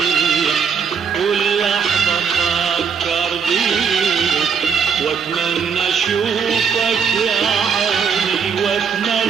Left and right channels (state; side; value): quieter; left; 6.6 dB